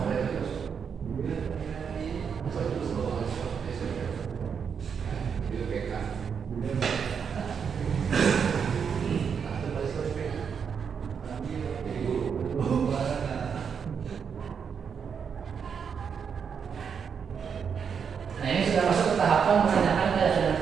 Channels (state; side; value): quieter; left; 6.8 dB